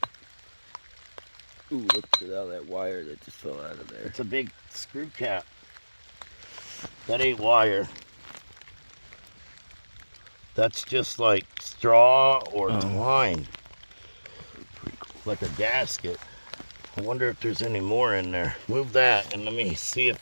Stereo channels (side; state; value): both; inverted; correlation -1.00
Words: Ooh, look at all that wire that just fell out of there. It's a big screw cap. That ain't wire. That's just like straw or twine. Like a gasket. I wonder if there's any more in there. Move that and let me see